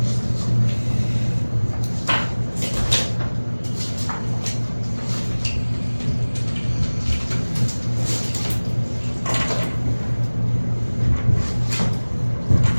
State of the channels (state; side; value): inverted; both; correlation -1.00